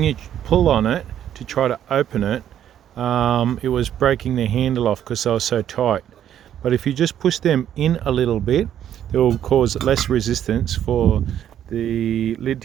you pull on it to try to open it, it was breaking the handle off because they were so tight. But if you just push them in a little bit, it will cause less resistance for the lid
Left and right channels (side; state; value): left; quieter; 10.4 dB